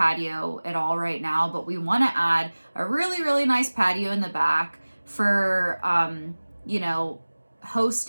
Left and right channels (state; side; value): inverted; both; correlation -1.00